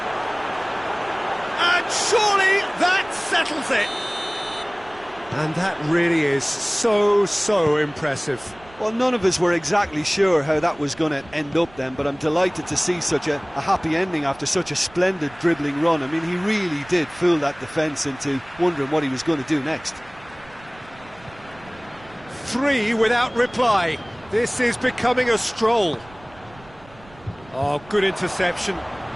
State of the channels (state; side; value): noise; right; rumble, 24 dB below the sound